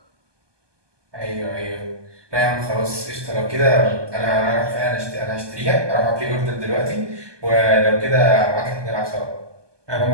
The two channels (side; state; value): left; late; 1.2 ms